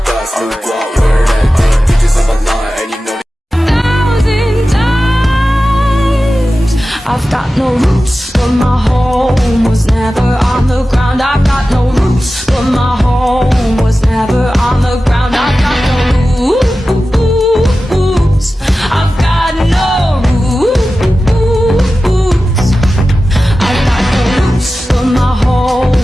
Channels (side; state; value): both; normal; correlation 0.94